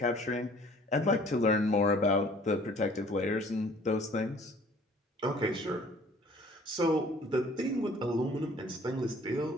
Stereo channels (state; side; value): normal; both; correlation 0.54